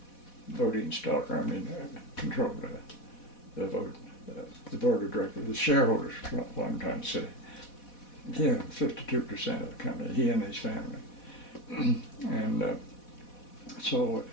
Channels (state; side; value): late; right; 4.1 ms